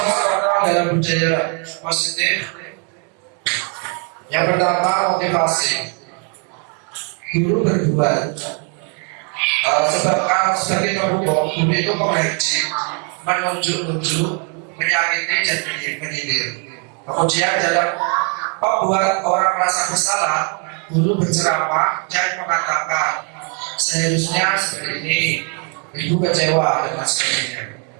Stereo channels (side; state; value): left; quieter; 38.1 dB